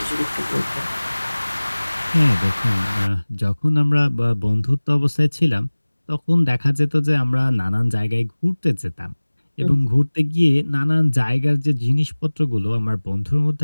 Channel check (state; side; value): inverted; both; correlation -1.00